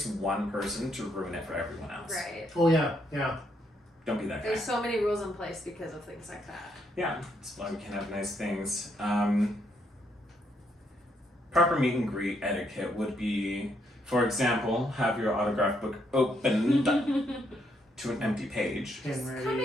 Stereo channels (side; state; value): both; normal; correlation 0.75